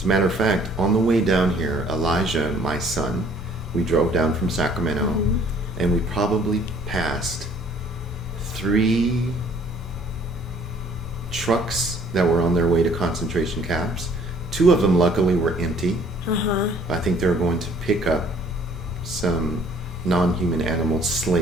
a matter of fact, on the way down here, Elijah, my son, we drove down from Sacramento, and we probably passed 3 trucks that were on their way to concentration camps. 2 of them, luckily, were empty. I think they were going to pick up some non-human animal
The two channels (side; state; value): both; normal; correlation 0.57